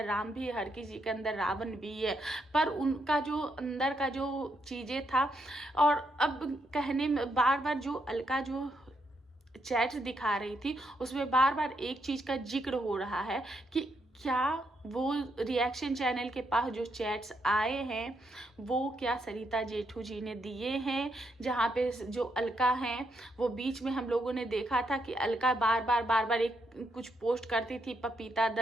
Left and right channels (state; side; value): normal; both; correlation 0.78